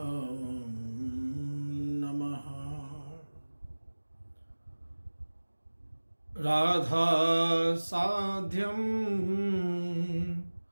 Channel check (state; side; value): inverted; both; correlation -1.00